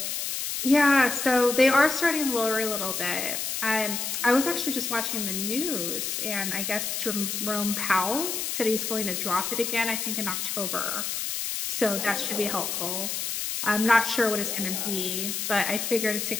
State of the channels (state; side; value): noise; left; hiss, 2 dB below the sound